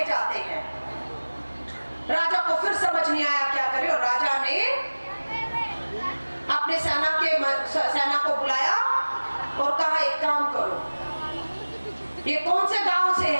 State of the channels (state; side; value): inverted; both; correlation -1.00